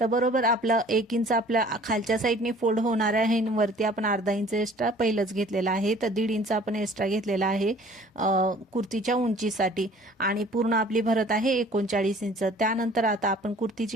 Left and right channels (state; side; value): normal; both; correlation 0.51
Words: बरोबर आपलं 1 इंच आपल्या खालच्या साईडने फोल्ड होणार आहे, वरती आपण अर्धा इंच एक्स्ट्रा पहिलंच घेतलेला आहे, तर 1.5 इंच आपण एक्स्ट्रा घेतलेला आहे कुर्तीच्या उंचीसाठी आणि पूर्ण आपली भरत आहे 39 इंच। त्यानंतर आता आपण कुर्तीची